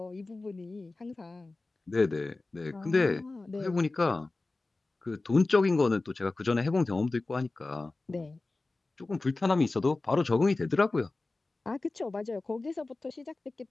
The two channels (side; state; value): right; quieter; 3.3 dB